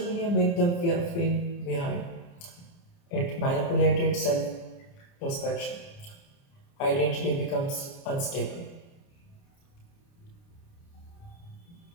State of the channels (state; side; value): late; right; 29 ms